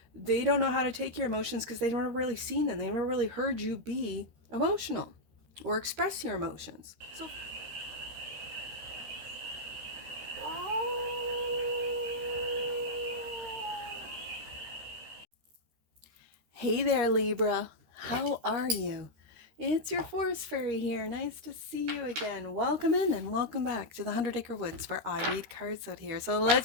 they don't know how to take your emotions because they don't really seen them. They never really heard you be emotional or express your emotions. So hey there, Libra. How are you? It's your forest fairy here. Nice to see you again. Welcome in and welcome back to the 100 Acre Woods where I read cards out here. So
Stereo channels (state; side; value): late; left; 13 ms